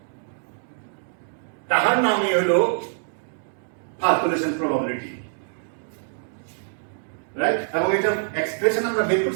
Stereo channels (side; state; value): left; silent; digital silence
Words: তাহার নামই হলো calculation probability, right? এবং এটা এক্সপ্রেশন আমরা বের